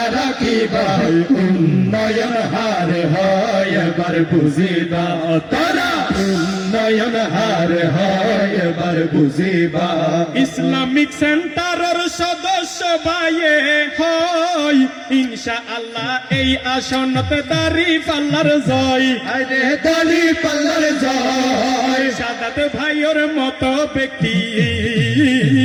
রাখিবা উন্নয়ন হার হয় এবার বুঝিবা তোরা উন্নয়ন হার হয় এবার বুঝিবা ইসলামিক সেন্টারের সদস্য ভাইয়ে হয় ইনশাআল্লাহ এই আসনত দাড়ি পাল্লার জয় আরে দাড়ি পাল্লার জয় শাহাদাত ভাইয়ের মতো ব্যক্তি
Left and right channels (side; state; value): both; identical; correlation 1.00